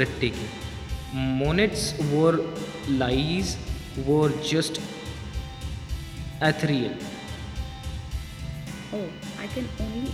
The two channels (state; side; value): identical; both; correlation 1.00